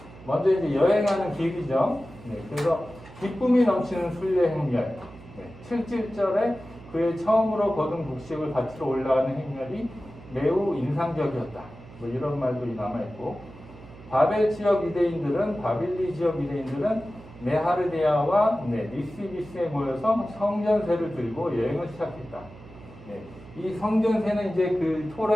먼저 이제 여행하는 길이죠. 그래서 기쁨이 넘치는 순례 행렬. 7절에 그의 처음으로 거둔 곡식을 바치러 올라가는 행렬이 매우 인상적이었다. 뭐 이런 말도 남아있고, 바벨 지역 유대인들은, 바빌리 지역 유대인들은 메하르데아와 니스비스에 모여서 성전세를 들고 여행을 시작했다. 이 성전세는 이제 그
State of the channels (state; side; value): noise; right; hum, 19 dB below the sound